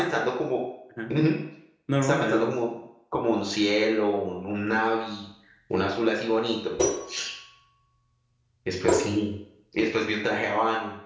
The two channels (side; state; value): both; identical; correlation 1.00